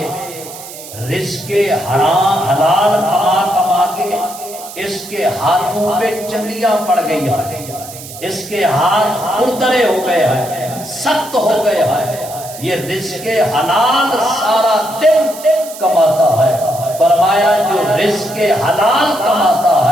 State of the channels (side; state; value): right; noise; hiss, 14 dB below the sound